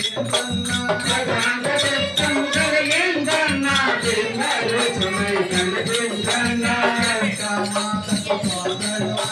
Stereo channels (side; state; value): both; identical; correlation 1.00